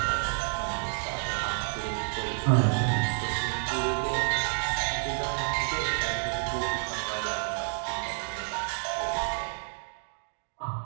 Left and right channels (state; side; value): silent; left; 58 dB below the other